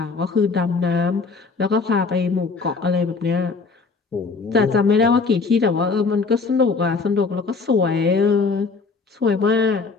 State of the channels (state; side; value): quieter; right; 4.4 dB